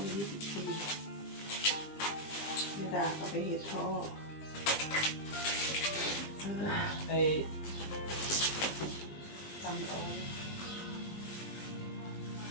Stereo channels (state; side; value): late; right; 20 ms